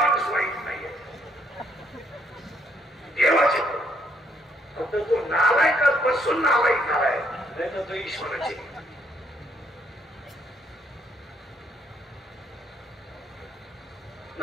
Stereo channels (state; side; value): normal; both; correlation 0.70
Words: वाईट नाहीये देवाचे फक्त तो नालायकात बसून नालायक झालाय नाही तर तो ईश्वराचे